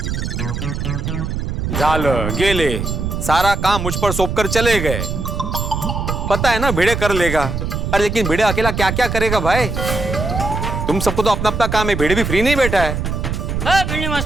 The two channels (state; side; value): noise; right; rumble, 3 dB below the sound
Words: झालं, गेले, सारा काम मुझ पर सौंप कर चले गए। पता है ना भिड़े कर लेगा, अरे लेकिन भिड़े अकेला क्या क्या करेगा भाई? तुम सबको तो अपना अपना काम है, भिड़े भी फ्री नहीं बैठा है। भिंडी